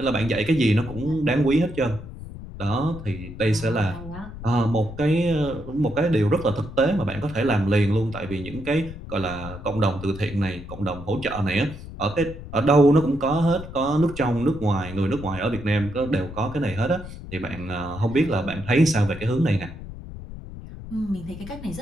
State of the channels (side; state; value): left; noise; rumble, 12 dB below the sound